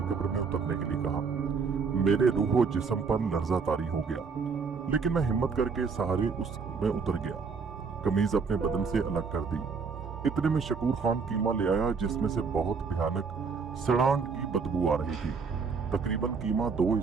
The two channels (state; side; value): quieter; left; 5.2 dB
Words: कब्र में उतरने के लिए कहा। मेरे रूह और जिस्म पर लर्जा तारी हो गया, लेकिन मैं हिम्मत करके सहारे उसमें उतर गया। कमीज अपने बदन से अलग कर दी। इतने में शकूर खान कीमा ले आया जिसमें से बहुत भयानक सड़ांग की बदबू आ रही थी। तकरीबन कीमा 2